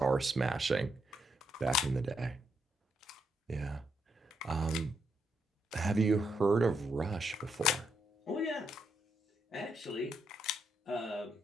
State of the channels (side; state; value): both; normal; correlation 0.79